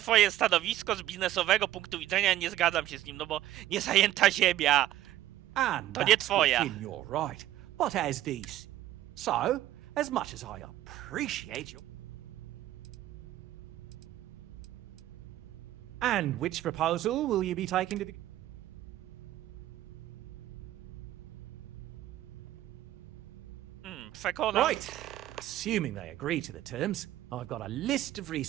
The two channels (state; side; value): quieter; left; 13.9 dB